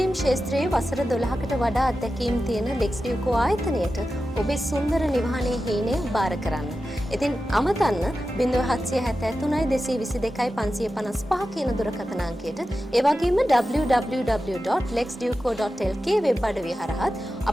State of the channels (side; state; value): both; normal; correlation 0.92